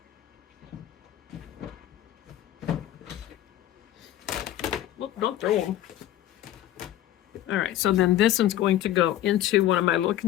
Look, don't throw them. All right, so then this one's going to go into one of my little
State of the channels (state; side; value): quieter; right; 13.0 dB